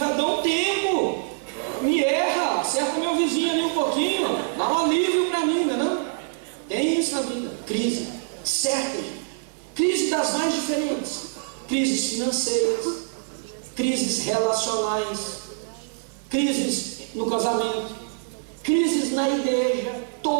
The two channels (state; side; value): silent; left; digital silence